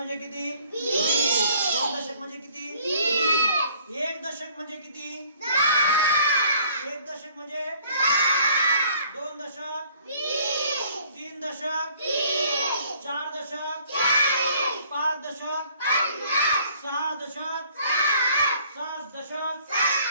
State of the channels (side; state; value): both; inverted; correlation -0.58